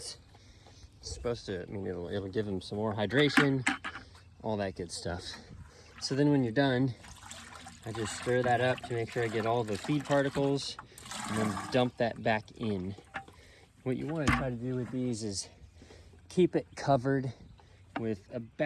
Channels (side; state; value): both; identical; correlation 1.00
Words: It's supposed to, it'll give them some more hydration, all that good stuff. So then when you're done, I just stir that up to make sure I get all the feed particles and then dump that back in. What you want to try to do with these is keep it covered with